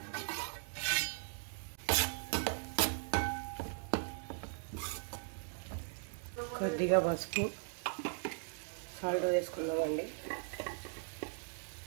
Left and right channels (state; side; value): silent; left; 52 dB below the other